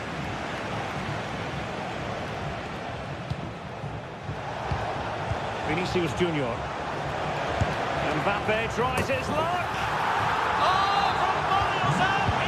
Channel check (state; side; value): identical; both; correlation 1.00